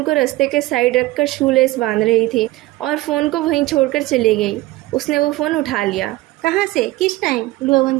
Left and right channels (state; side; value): quieter; left; 18.5 dB